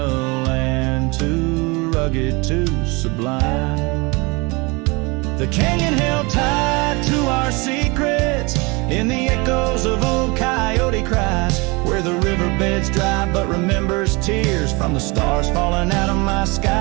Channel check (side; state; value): left; quieter; 26.8 dB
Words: land too rugged, too sublime. The canyon held tight to our secrets in the echoes of old coyote cries, where the riverbed's dry but remembers tears from the stars falling out of my